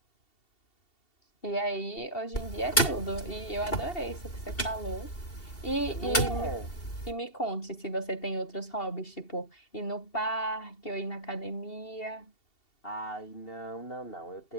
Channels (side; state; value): right; late; 2.7 ms